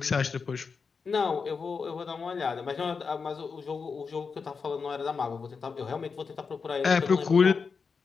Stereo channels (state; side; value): quieter; right; 5.3 dB